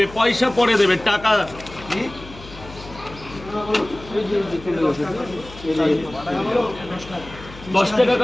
পয়সা পরে দেবে, টাকা 10 টাকা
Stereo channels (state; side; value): noise; left; hum, 17 dB below the sound